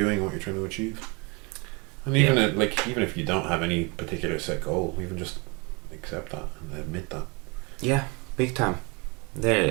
what you're trying to achieve, and even even if you don't have any particular set goal, even just accept that and admit that. Yeah, big time. There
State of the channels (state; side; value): quieter; left; 29.5 dB